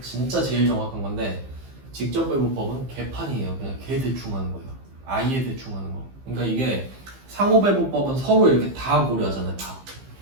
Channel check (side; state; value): left; late; 15 ms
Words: 진짜 제일 정확한 건데 직접배분법은 개판이에요. 그냥 개 대충 하는 거예요. 아예 대충 하는 거. 그러니까 이게 상호배분법은 서로 이렇게 다 고려하잖아요. 다.